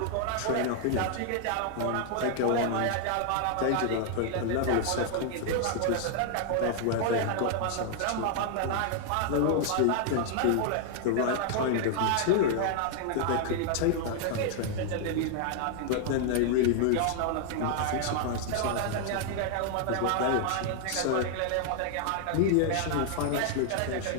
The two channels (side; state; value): both; different; correlation 0.00